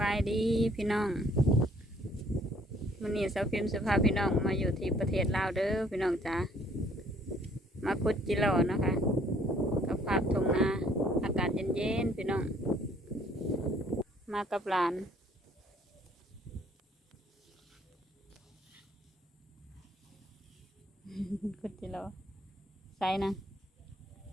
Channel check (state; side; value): normal; both; correlation 0.62